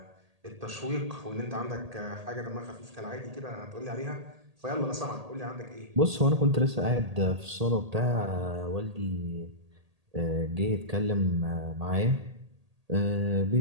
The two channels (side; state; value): left; late; 1.8 ms